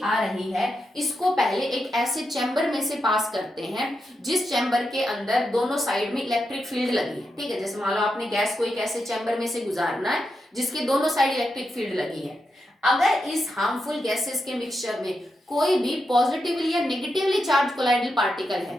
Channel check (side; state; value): both; normal; correlation 0.86